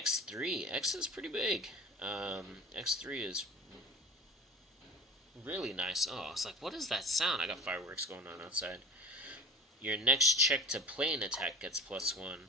X is pretty big. X3 is really nice. Oh, it's like, what is that sound? I got fireworks going on outside. Your next check to play an attack gets +1.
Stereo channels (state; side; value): normal; both; correlation 0.38